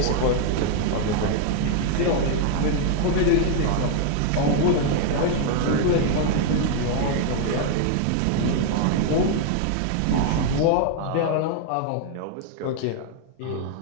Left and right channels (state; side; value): different; both; correlation 0.00